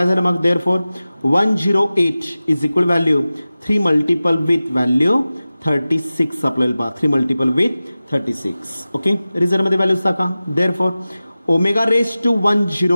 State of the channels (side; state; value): both; inverted; correlation -0.96